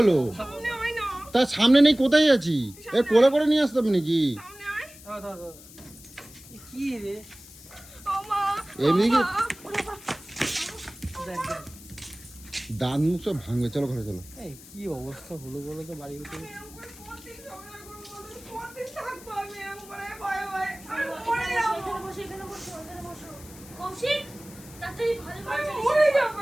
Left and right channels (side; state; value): left; noise; hiss, 19 dB below the sound